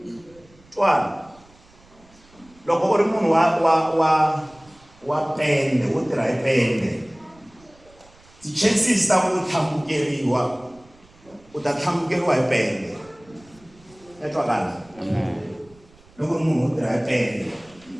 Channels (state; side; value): noise; right; rumble, 27 dB below the sound